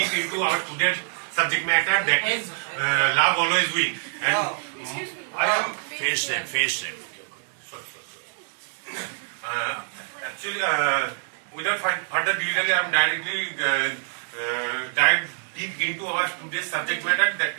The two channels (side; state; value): left; silent; 61 dB below the other